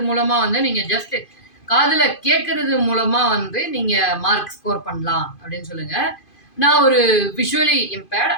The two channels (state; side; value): late; right; 2.5 ms